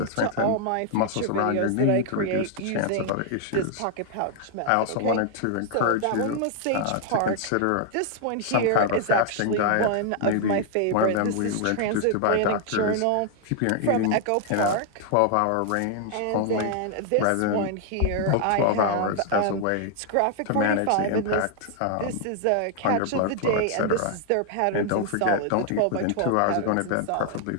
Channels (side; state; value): both; different; correlation 0.00